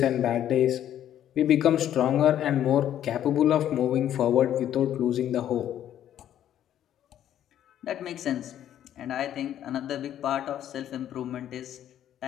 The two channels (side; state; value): right; quieter; 11.0 dB